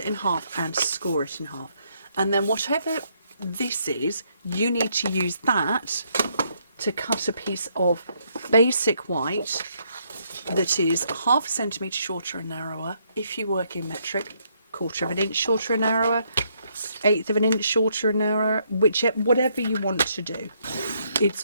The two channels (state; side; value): inverted; both; correlation -0.73